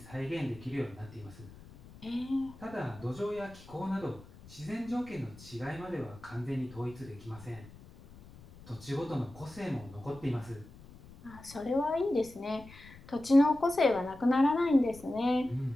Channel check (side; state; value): left; noise; rumble, 20 dB below the sound